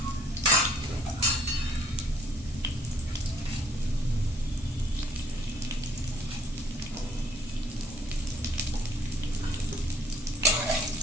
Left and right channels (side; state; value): both; normal; correlation 0.60